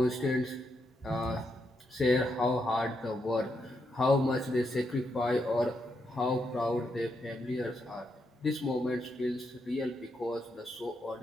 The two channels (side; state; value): both; normal; correlation 0.81